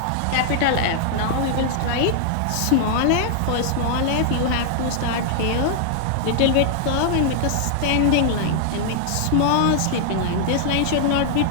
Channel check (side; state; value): both; different; correlation 0.00